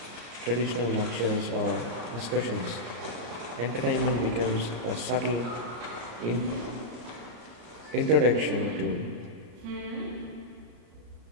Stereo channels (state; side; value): late; left; 34 ms